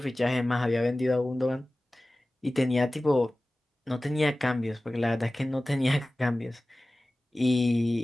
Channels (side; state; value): both; normal; correlation 0.97